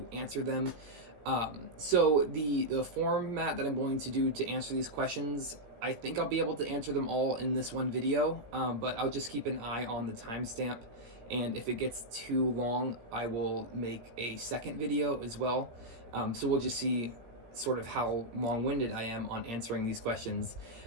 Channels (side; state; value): left; late; 17 ms